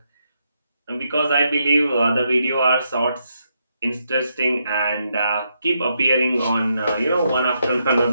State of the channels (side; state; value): both; inverted; correlation -0.80